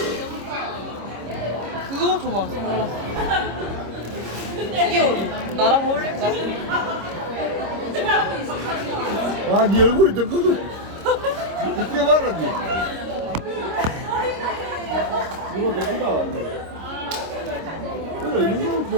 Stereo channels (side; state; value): left; late; 26 ms